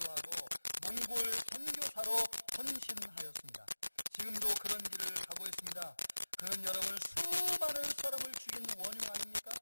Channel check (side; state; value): both; inverted; correlation -1.00